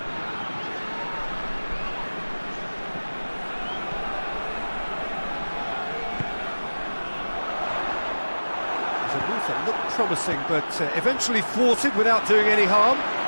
promising, but eventually thwarted without doing any harm.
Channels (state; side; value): inverted; both; correlation -1.00